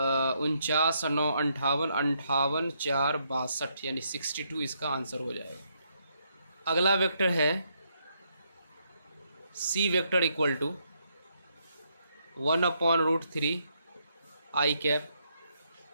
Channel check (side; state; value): both; inverted; correlation -0.76